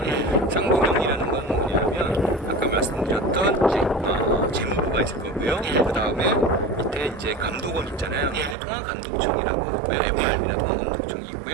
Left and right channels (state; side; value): drops out; left; at 8.6 s